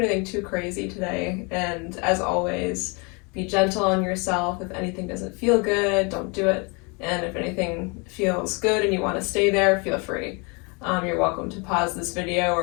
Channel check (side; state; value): right; quieter; 31.2 dB